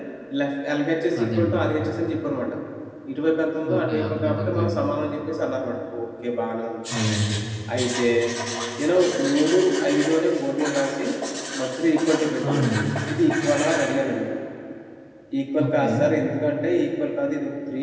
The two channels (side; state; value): both; identical; correlation 1.00